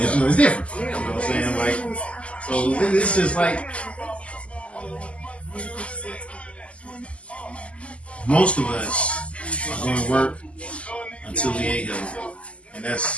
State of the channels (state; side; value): late; right; 0.059 ms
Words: know, it's different. You know what I'm saying? Like, so it's just like most of us are going to work until we ain't healthy, and